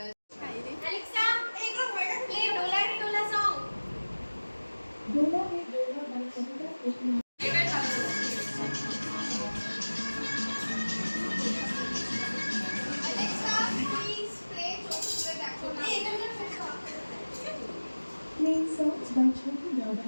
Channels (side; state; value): both; inverted; correlation -1.00